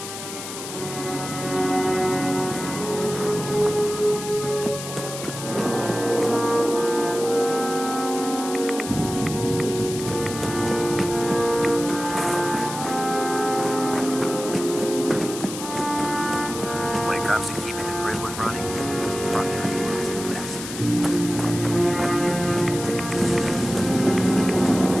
When it comes to keeping the grid one running, Proctor is the best.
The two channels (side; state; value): left; noise; hiss, 9 dB below the sound